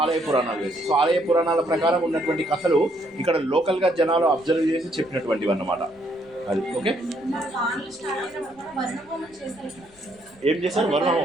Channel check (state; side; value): noise; left; rumble, 28 dB below the sound